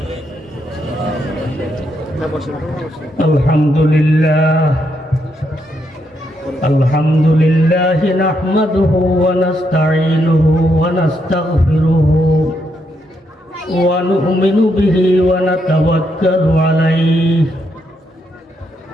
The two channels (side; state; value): both; normal; correlation 0.78